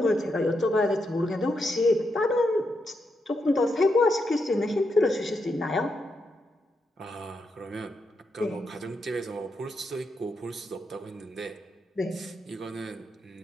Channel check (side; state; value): both; normal; correlation 0.82